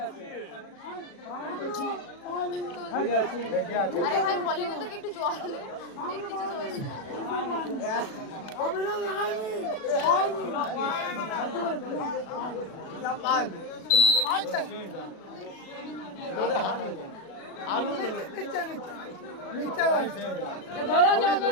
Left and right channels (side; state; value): right; late; 37 ms